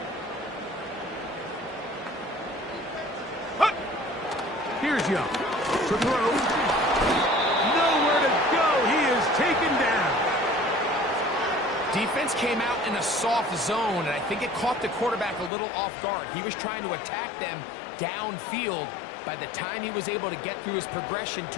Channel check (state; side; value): drops out; right; at 15.5 s